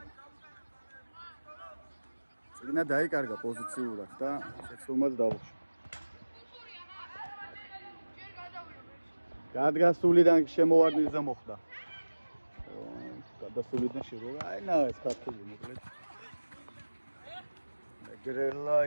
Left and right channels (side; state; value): both; inverted; correlation -1.00